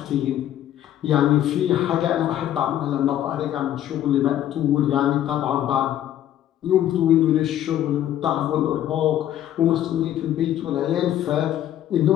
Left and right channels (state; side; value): quieter; right; 11.8 dB